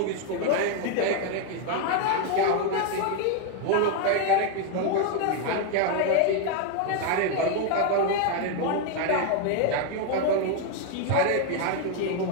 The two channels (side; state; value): both; different; correlation 0.01